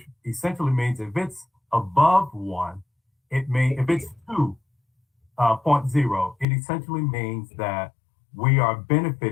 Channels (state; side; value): drops out; right; at 6.5 s